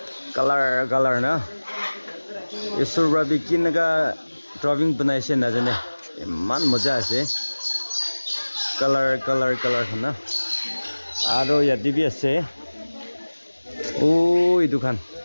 কালাৰ না এছৰ বাবে কেনেকা ড্ৰয়িং বনাইছে নাজানে ইমান মজা আছে কালাৰ না আৰু ইয়াতে বি আছে এই দুখান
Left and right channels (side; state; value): both; inverted; correlation -1.00